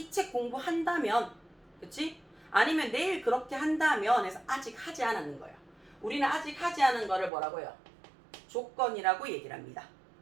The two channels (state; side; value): drops out; left; at 7.3 s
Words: 책 공부한다면, 그치? 아니면 내일 그렇게 한다면 해서 아직 하지 않았는 거예요. 우리는 아직 하지 않은 거를 뭐라고요? 조건이라고 얘기를 합니다.